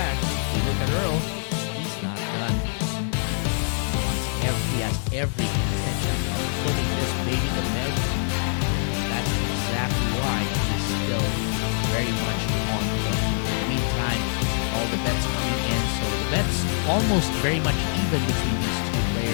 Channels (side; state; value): right; silent; digital silence